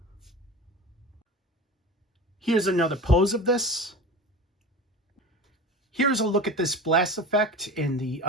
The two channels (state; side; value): normal; both; correlation 0.33